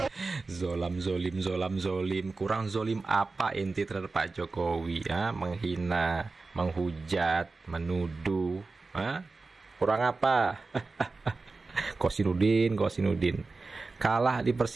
Zolim, kurang zolim apa inti terhadap Pak Jokowi ya? Menghina, menghujat, menuduh, kurang apa? Kosinudin kalah di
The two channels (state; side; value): quieter; left; 3.8 dB